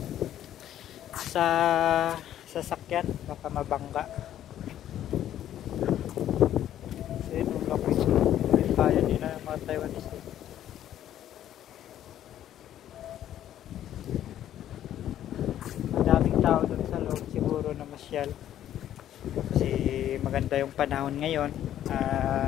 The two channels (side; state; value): right; quieter; 11.5 dB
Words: sa sasakyan baka mabangga. So yun yung location may kaya nila mga Taiwanese. Madaming tao dun sa loob siguro na masyal kasi maganda yung panahon ngayon